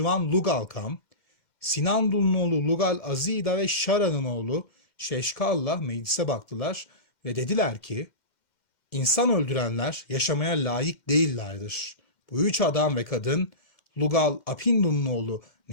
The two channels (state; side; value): late; right; 2.1 ms